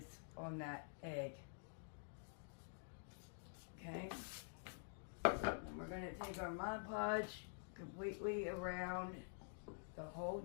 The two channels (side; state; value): right; silent; digital silence